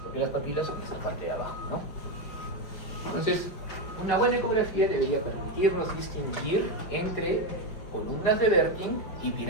porque las papilas son esta parte de abajo, ¿no? Entonces, una buena ecografía debería permitirnos distinguir entre columnas de Werting y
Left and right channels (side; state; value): right; late; 5.1 ms